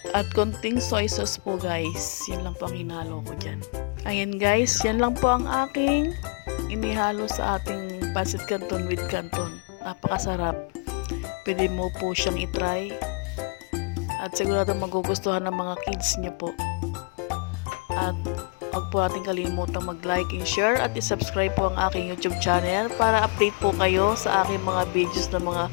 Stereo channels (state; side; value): quieter; right; 34.0 dB